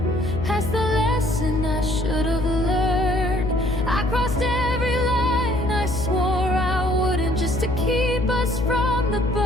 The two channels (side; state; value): left; noise; hum, 5 dB below the sound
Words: past the lesson I should have learned. I crossed every line I swore I wouldn't, just to keep us from the